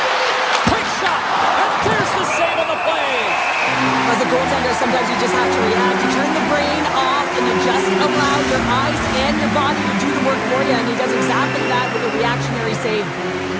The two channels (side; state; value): both; identical; correlation 1.00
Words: Quick shot, and there's the save on the play. As a goaltender, sometimes you just have to react. You turn the brain off and you just allow your eyes and your body to do the work for you, and he does exactly that with a reactionary save.